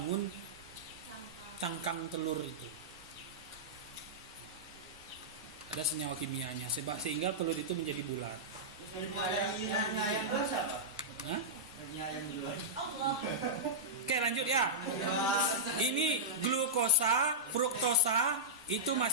cangkang telur itu. Ada senyawa kimianya sehingga telur itu menjadi bulat. Ayam basah, Pak. Hah? Ayam duluan. Allah. Oke, lanjut ya. Ini glukosa, fruktosa itu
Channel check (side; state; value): both; normal; correlation -0.11